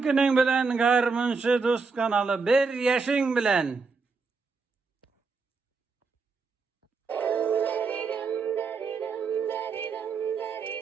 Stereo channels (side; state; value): left; quieter; 4.6 dB